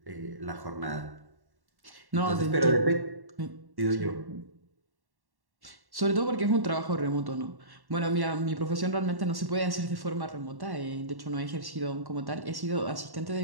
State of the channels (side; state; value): left; late; 1.1 ms